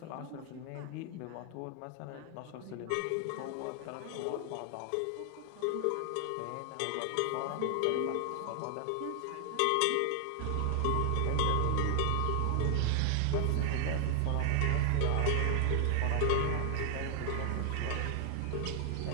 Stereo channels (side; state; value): both; different; correlation 0.00